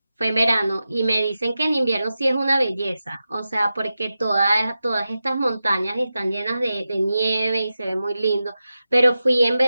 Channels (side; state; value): both; inverted; correlation -0.92